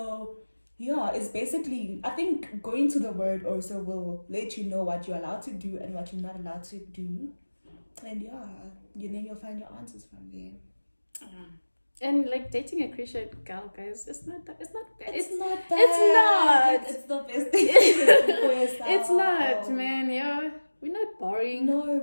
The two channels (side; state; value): both; inverted; correlation -1.00